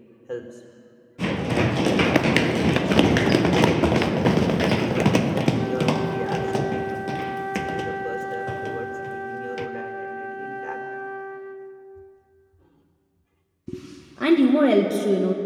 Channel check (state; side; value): identical; both; correlation 1.00